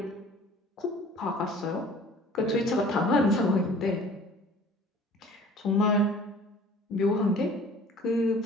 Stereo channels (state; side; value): normal; both; correlation 0.48